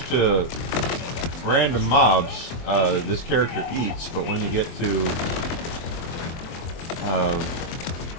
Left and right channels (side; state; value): right; late; 23 ms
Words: to random mobs, this character eats, but when you get to